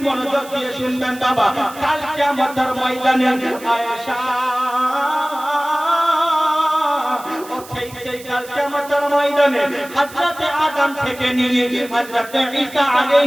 মনোযোগ দিয়ে শুনবেন বাবা, কাল কিয়ামতের ময়দানে আয়েশা, সেই কাল কিয়ামতের ময়দানে হযরতে আদম থেকে নিয়ে হযরতে ঈসা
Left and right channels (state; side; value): noise; right; hiss, 18 dB below the sound